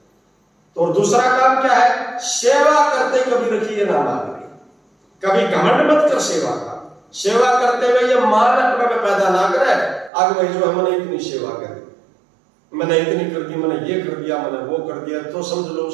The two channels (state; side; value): drops out; left; at 10.1 s